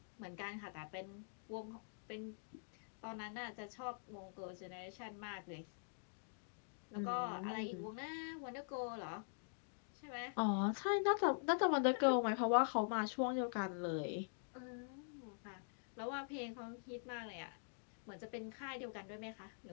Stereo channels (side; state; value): right; silent; digital silence